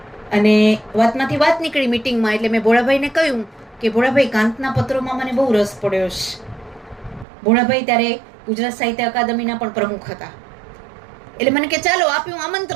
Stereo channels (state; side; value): drops out; left; at 7.2 s